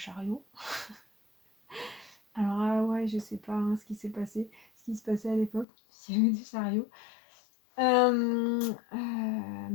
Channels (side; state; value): right; drops out; at 5.7 s